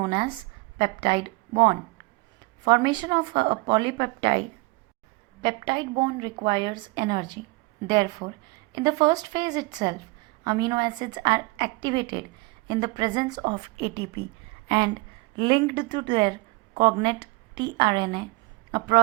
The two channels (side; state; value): left; quieter; 24.6 dB